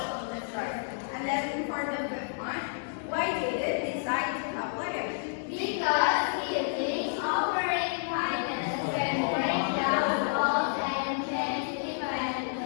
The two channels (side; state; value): right; silent; digital silence